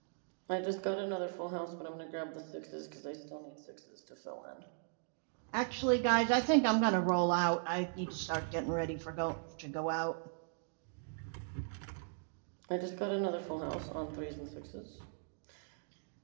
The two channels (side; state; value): left; silent; digital silence